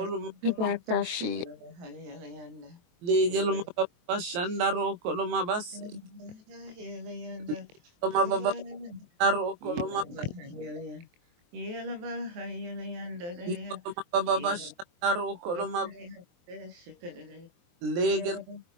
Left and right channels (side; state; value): left; late; 23 ms